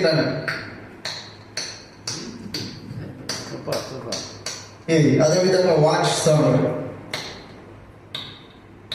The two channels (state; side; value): identical; both; correlation 1.00